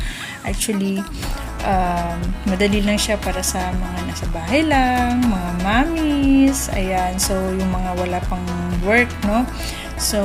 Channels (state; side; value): identical; both; correlation 1.00